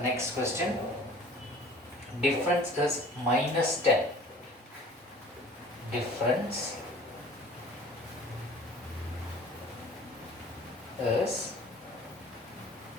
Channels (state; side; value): normal; both; correlation 0.47